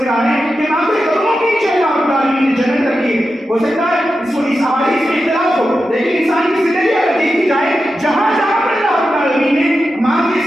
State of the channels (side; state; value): both; normal; correlation 0.90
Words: ہے کہ ماں کے قدموں کے نیچے اللہ رب العالمین نے جنت رکھی ہے۔ ہو سکتا ہے اس احادیث میں اختلاف ہو، لیکن انسان کی زندگی اگر دیکھی جائے جہاں جہاں پر اللہ رب العالمین نے ماں کے